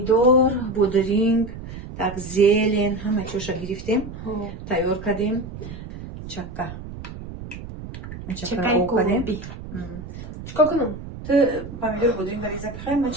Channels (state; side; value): noise; right; rumble, 11 dB below the sound